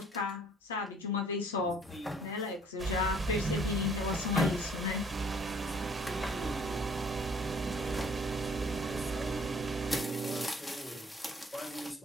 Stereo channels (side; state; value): both; normal; correlation 0.57